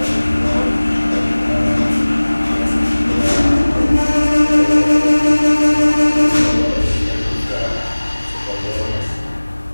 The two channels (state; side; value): inverted; both; correlation -1.00